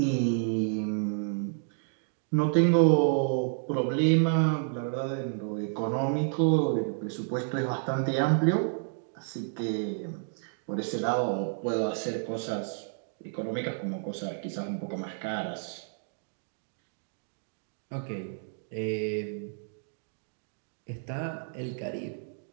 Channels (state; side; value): silent; left; digital silence